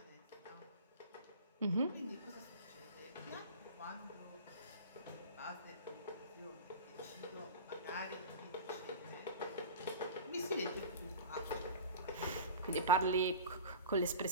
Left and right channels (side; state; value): both; inverted; correlation -0.33